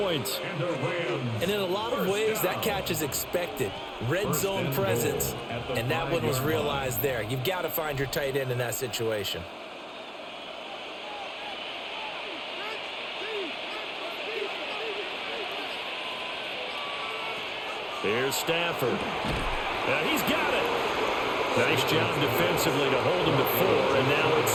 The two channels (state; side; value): identical; both; correlation 1.00